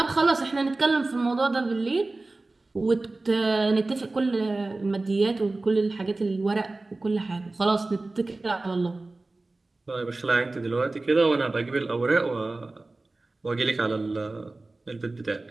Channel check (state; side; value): quieter; left; 3.2 dB